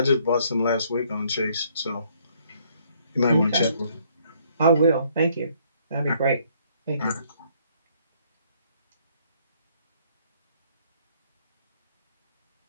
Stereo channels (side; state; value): both; inverted; correlation -0.66